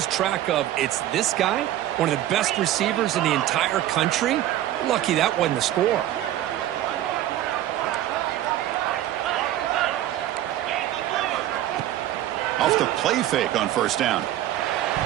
track of, it's this guy, one of the best receivers in the entire country. Lucky that wasn't the score. Off the play fake on first down.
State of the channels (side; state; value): left; quieter; 13.2 dB